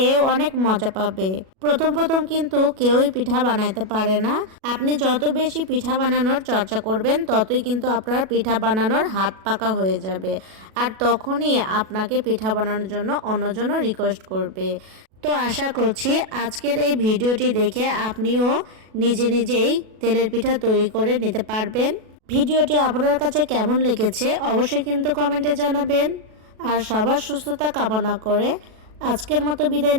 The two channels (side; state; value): left; late; 37 ms